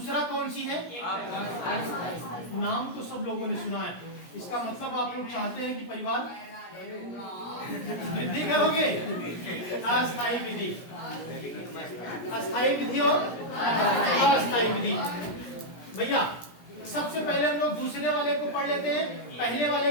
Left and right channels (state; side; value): late; right; 17 ms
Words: कौन सी है? नाम तो सब लोगों ने सुना है। इसका मतलब आप लोग चाहते हैं कि परिवार वृद्धि करोगे। अस्थायी विधि, अस्थायी विधि और अस्थायी विधि। भैया सबसे पहले हम लोग दूसरे वाले को पढ़ लेते हैं, पहले